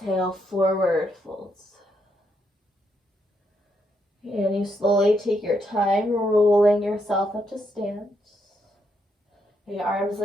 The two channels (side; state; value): both; normal; correlation 0.78